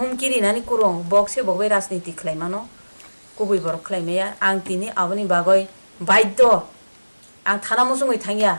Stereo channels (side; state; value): both; inverted; correlation -1.00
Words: नानि कुरुं बक्से बगबै राजनीति खलायमानो कुबि बरक खलायमाया आं तिनि आबनि बागै बाध्य आं थाना मुसुङै थांगिया